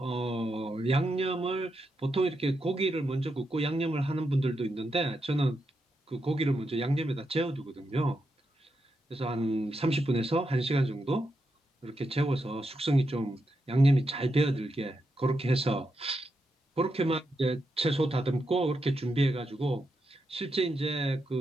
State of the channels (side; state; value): both; normal; correlation 0.84